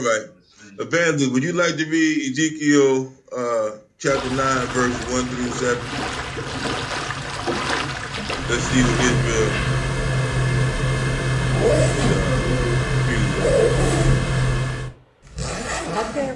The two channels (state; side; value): identical; both; correlation 1.00